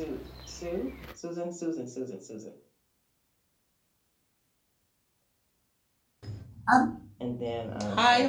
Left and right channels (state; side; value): identical; both; correlation 1.00